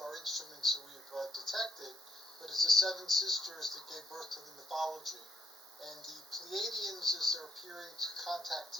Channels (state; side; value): normal; both; correlation 0.76